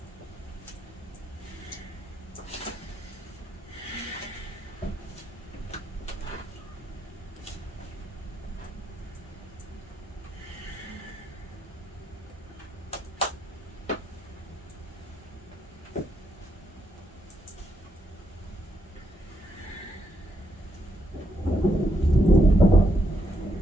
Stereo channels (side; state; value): both; normal; correlation 0.78